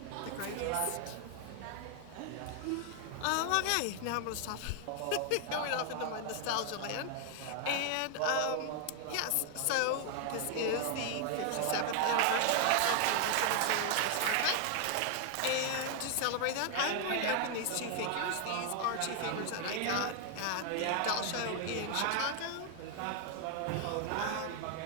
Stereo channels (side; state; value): both; different; correlation 0.00